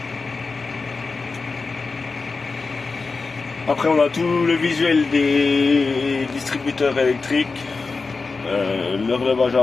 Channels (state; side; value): quieter; right; 4.2 dB